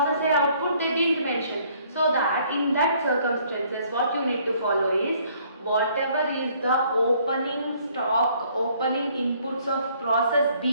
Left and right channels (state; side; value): inverted; both; correlation -0.62